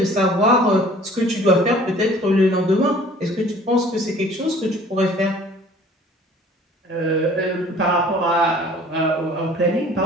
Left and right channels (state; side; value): normal; both; correlation 0.51